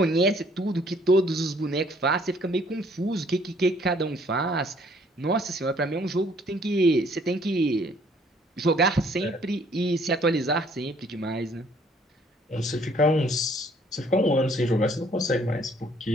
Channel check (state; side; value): normal; both; correlation 0.61